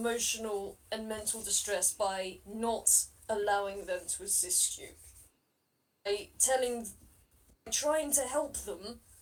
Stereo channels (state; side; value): identical; both; correlation 1.00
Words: and mental distress by not allowing them to assist you. By trying to help them,